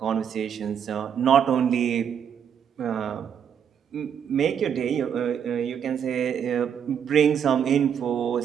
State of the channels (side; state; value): left; quieter; 8.1 dB